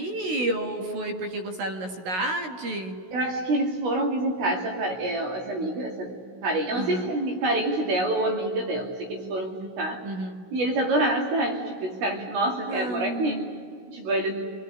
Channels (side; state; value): left; late; 16 ms